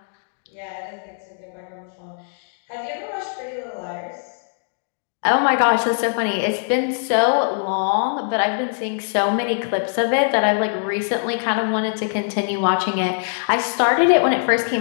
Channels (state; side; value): silent; right; digital silence